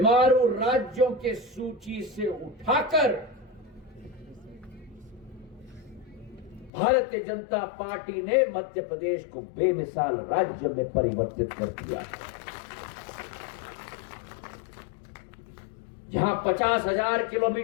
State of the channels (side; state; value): right; drops out; at 6.7 s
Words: राज्यों के सूची से उठाकर भारतीय जनता पार्टी ने मध्य प्रदेश को बेमिसाल राज्य में परिवर्तित कर दिया। जहां 50,000